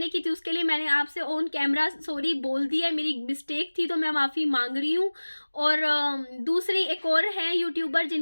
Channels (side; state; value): both; inverted; correlation -1.00